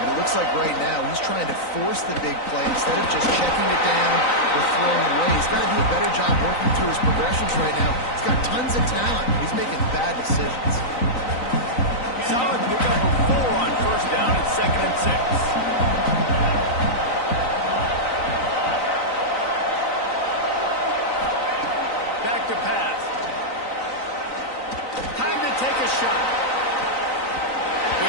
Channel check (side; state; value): right; late; 3.9 ms